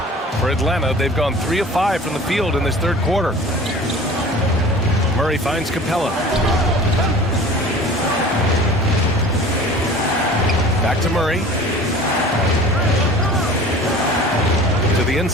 For Atlanta, they've gone 3 of 5 from the field in this third quarter. Murray finds Capella. Back to Murray. To the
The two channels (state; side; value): normal; both; correlation 0.43